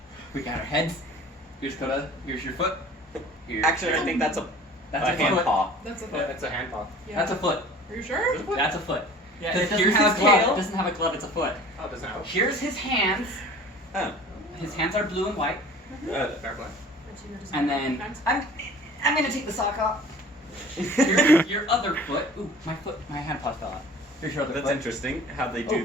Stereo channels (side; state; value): both; normal; correlation 0.45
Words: We got our heads. Here's Coda. Here's your foot. Here's Actually, I think that's a hand foot. paw. That's a foot. Yeah, that's a hand paw. Yeah. That's a foot. Are you sure? That's a foot. Yeah, Because it doesn't here's have his a glove. tail. It doesn't have a glove. It's a foot. Oh, it doesn't have. Here's his hands. Oh. His hands are blue and white. Fair play. And then I'm gonna take the sock off. Here's your other foot. Ooh, my hand paw fell out. Here's your other That's foot. interesting how they